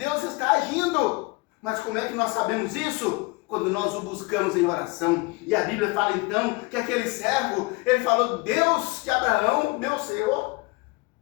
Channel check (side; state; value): right; quieter; 25.2 dB